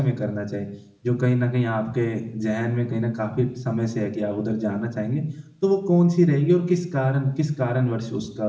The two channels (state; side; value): identical; both; correlation 1.00